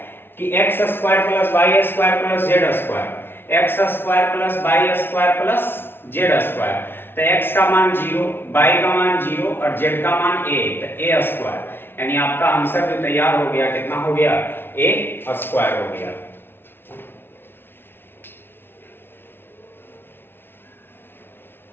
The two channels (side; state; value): right; late; 0.11 ms